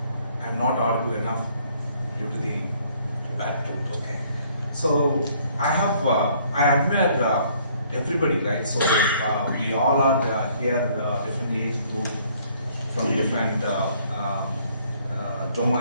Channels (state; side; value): inverted; both; correlation -0.62